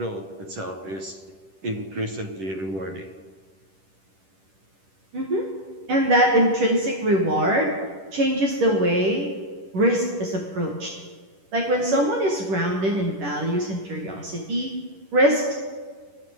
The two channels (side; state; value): left; late; 10 ms